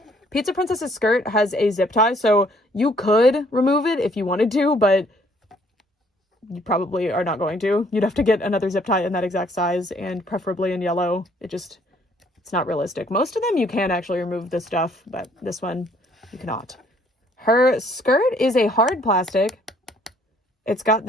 Pizza Princess's skirt has a zip tie, so you could remove it if you wanted to, but you probably are not going to. You'd have to get another zip tie in that exact size, and preferably in yellow. It's not realistic. Most of them you can actually remove the stuff, but this one you cannot. Her skirt is a hard plastic. It's got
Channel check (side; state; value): both; normal; correlation 0.63